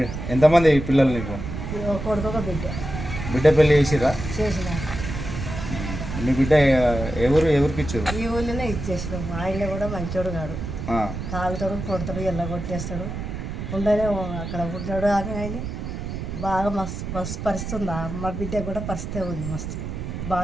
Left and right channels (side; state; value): right; noise; rumble, 6 dB below the sound